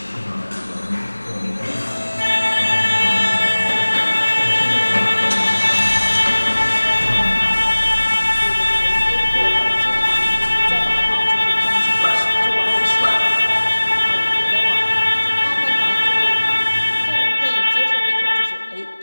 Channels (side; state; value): both; inverted; correlation -1.00